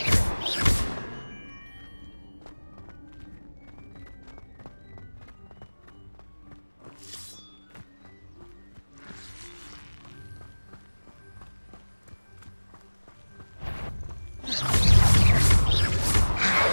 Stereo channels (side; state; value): both; inverted; correlation -1.00